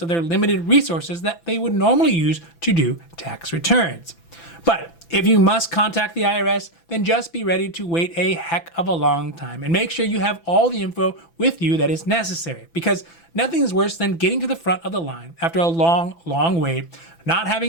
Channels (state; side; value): late; right; 6.0 ms